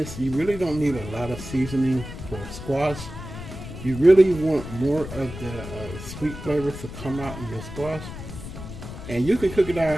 you really don't need a lot of seasoning for squash. You really want more of the sweet flavor to come out in your squash. And you can cook it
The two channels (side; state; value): left; noise; rumble, 11 dB below the sound